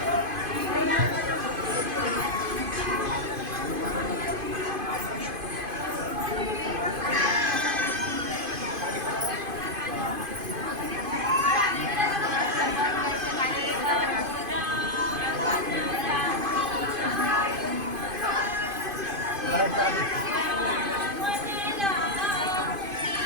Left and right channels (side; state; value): left; late; 2.5 ms